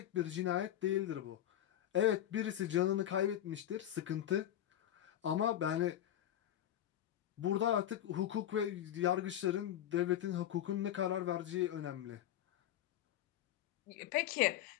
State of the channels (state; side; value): quieter; right; 11.6 dB